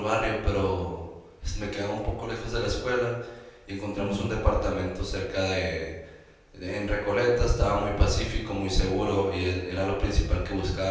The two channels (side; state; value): both; identical; correlation 1.00